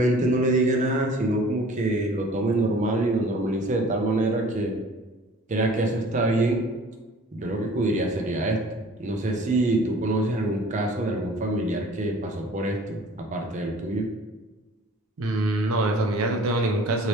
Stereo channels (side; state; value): both; normal; correlation 0.49